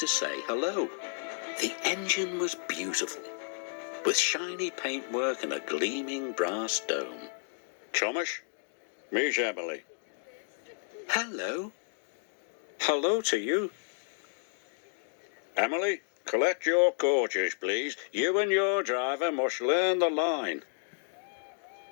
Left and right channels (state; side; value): silent; right; digital silence